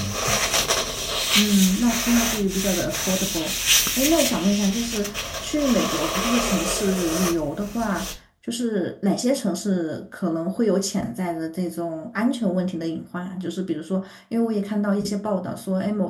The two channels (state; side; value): identical; both; correlation 1.00